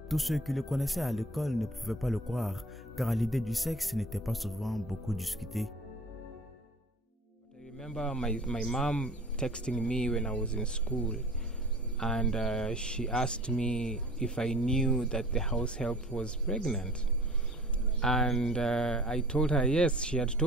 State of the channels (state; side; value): normal; both; correlation 0.45